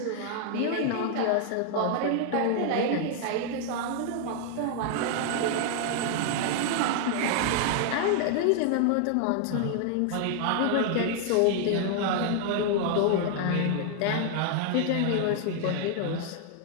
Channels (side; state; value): both; different; correlation 0.00